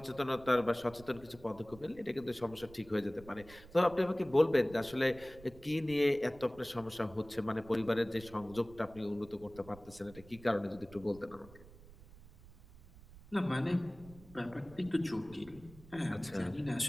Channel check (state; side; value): noise; right; rumble, 20 dB below the sound